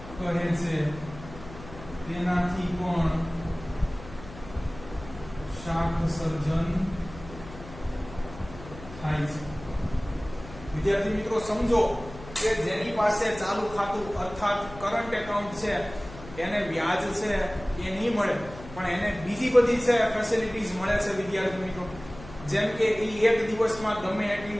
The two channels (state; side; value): noise; left; hum, 16 dB below the sound